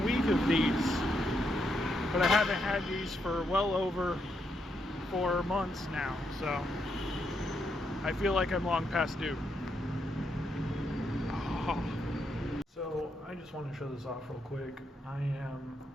of these, but I haven't had these for well over 4 months now, so I feel like I'm long past due. So I just want to show this off real quick. I am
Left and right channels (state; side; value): normal; both; correlation 0.80